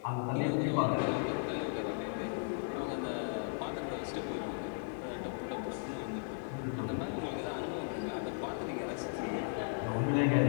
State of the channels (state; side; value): silent; right; digital silence